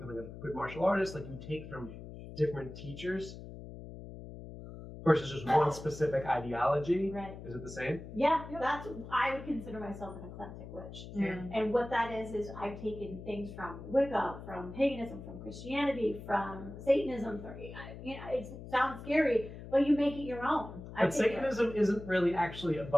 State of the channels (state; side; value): noise; left; hum, 12 dB below the sound